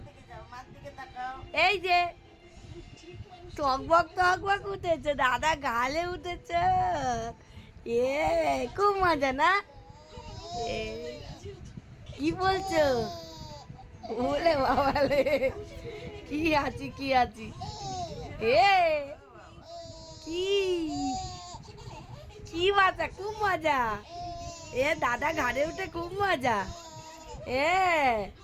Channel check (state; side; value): identical; both; correlation 1.00